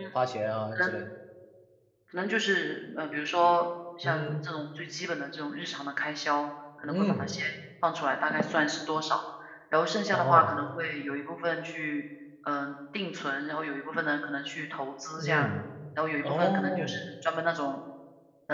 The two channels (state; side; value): identical; both; correlation 1.00